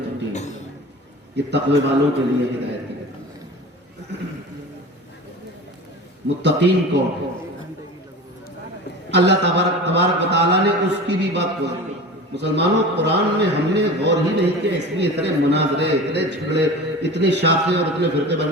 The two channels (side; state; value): both; normal; correlation 0.34